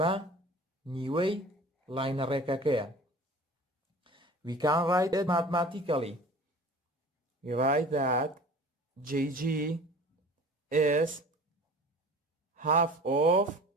نیوەی لاینە ڕێکەکەیە. We can write it mathematically. We write that JG is half of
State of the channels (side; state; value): both; normal; correlation 0.42